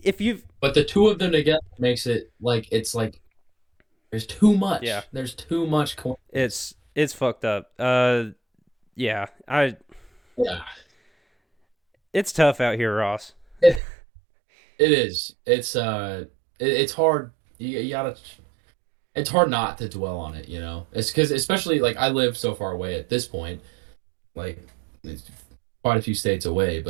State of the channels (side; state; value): left; drops out; at 13.8 s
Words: if you've But the two of them together makes it like it's like there's too yeah, much. There's too much coincidence. it's fucked up. Yeah, Yeah. it's tough out here, Ross. It, it is. It's hard. You gotta. It's hard not to dwell on it. It's because especially like I live so far away at this point, like it's quite a few states away,